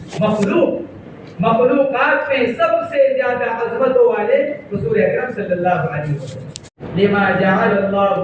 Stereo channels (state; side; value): identical; both; correlation 1.00